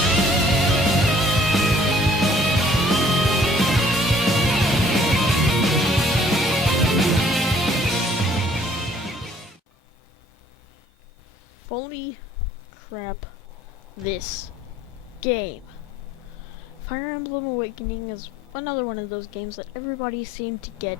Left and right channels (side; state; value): both; normal; correlation 0.58